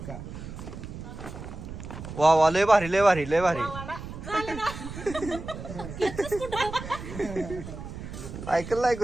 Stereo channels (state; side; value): noise; right; rumble, 10 dB below the sound